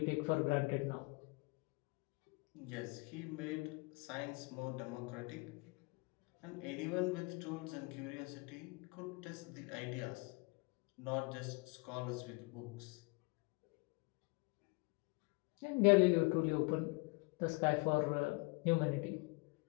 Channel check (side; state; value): right; quieter; 28.4 dB